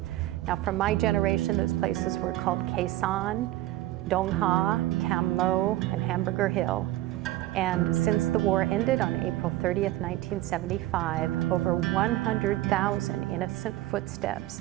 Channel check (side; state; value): left; quieter; 15.9 dB